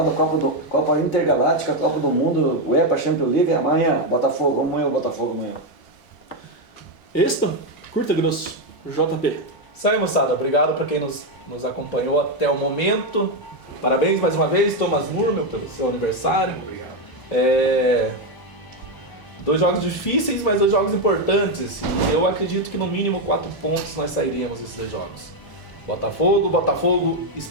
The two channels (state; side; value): late; right; 1.0 ms